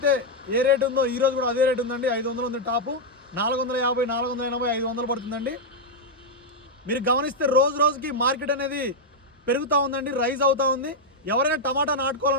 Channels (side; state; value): both; normal; correlation -0.01